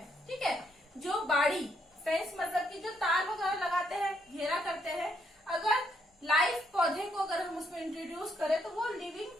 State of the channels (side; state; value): both; normal; correlation 0.73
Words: ठीक है, जो बाड़ी फेंस मतलब कि जो तार वगैरह लगाते हैं, घेरा करते हैं, अगर लाइफ पौधे को अगर हम उसमें इंट्रोड्यूस करें तो वो लिविंग